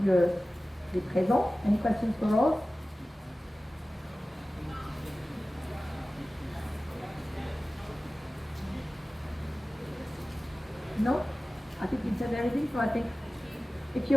les présents? Any questions for Rose? No? I think you said everything, so I think if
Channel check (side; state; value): both; normal; correlation 0.96